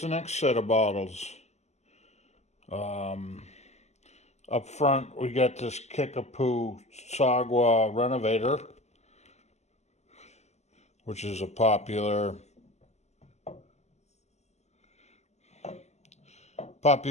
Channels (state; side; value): late; right; 0.33 ms